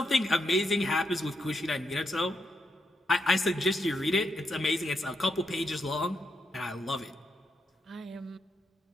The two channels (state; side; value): normal; both; correlation 0.82